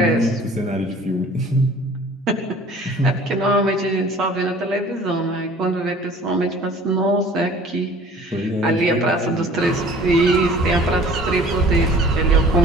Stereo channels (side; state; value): both; normal; correlation 0.49